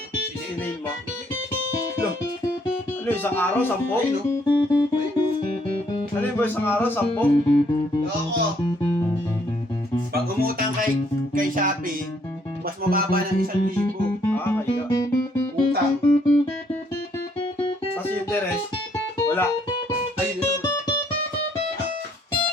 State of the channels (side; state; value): both; normal; correlation 0.67